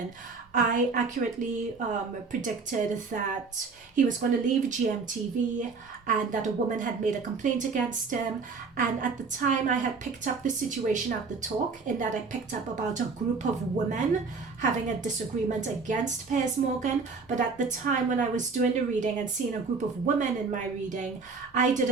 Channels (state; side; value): quieter; left; 4.7 dB